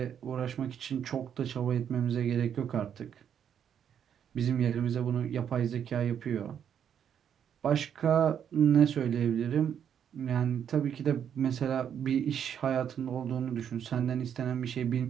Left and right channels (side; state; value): left; quieter; 8.7 dB